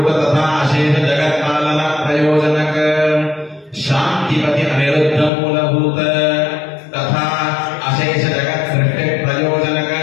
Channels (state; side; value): drops out; right; at 5.3 s